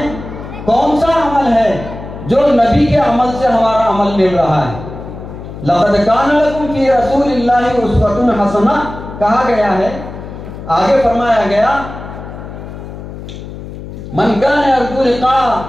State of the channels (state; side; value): noise; left; hum, 12 dB below the sound